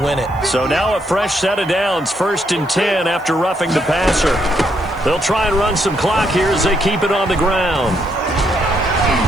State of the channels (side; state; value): left; noise; hiss, 28 dB below the sound